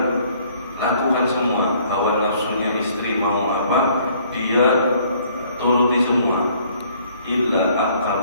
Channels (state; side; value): inverted; both; correlation -0.60